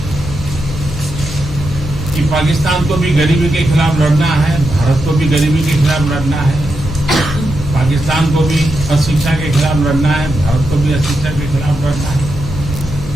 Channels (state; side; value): noise; left; hum, 13 dB below the sound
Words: कि पाकिस्तान को भी गरीबी के खिलाफ लड़ना है, भारत को भी गरीबी के खिलाफ लड़ना है, पाकिस्तान को भी अशिक्षा के खिलाफ लड़ना है, भारत को भी अशिक्षा के खिलाफ लड़ना है,